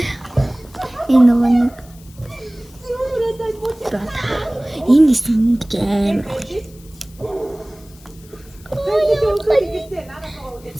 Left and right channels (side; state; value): left; noise; hiss, 25 dB below the sound